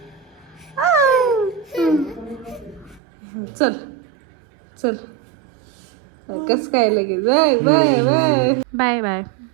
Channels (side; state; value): left; drops out; at 3.0 s